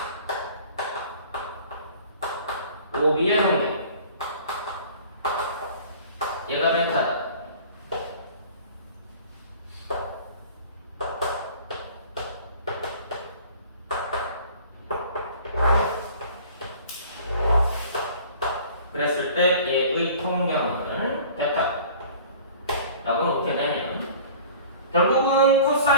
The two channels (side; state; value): both; inverted; correlation -0.47